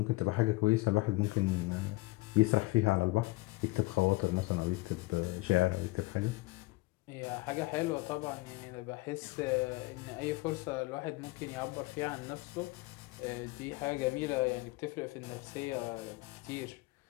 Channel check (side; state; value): right; quieter; 21.7 dB